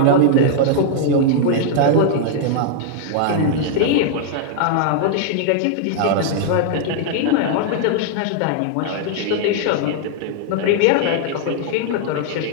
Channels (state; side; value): different; both; correlation -0.01